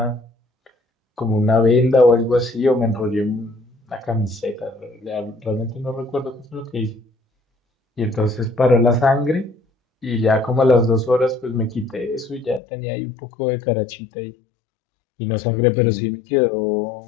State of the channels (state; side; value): drops out; right; at 12.6 s